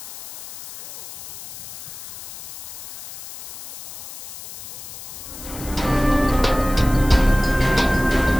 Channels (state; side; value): noise; left; hiss, 14 dB below the sound